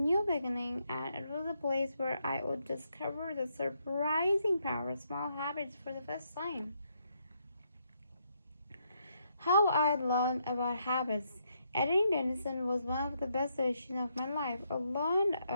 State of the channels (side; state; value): both; inverted; correlation -0.77